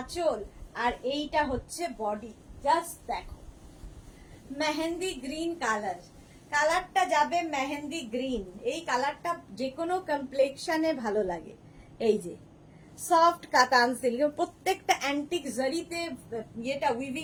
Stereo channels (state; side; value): identical; both; correlation 1.00